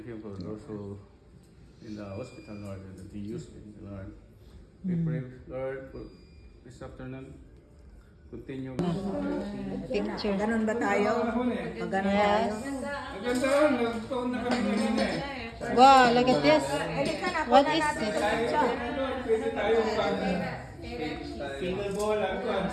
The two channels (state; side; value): identical; both; correlation 1.00